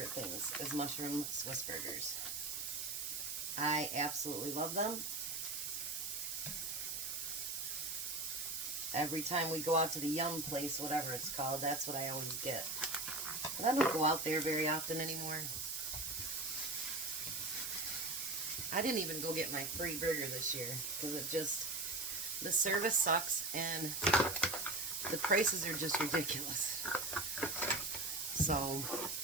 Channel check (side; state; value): right; noise; hiss, 4 dB below the sound